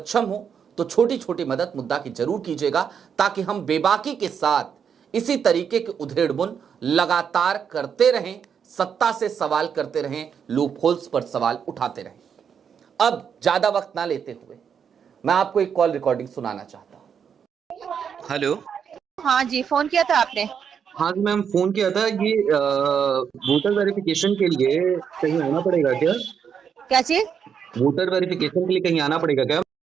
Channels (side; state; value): left; quieter; 7.4 dB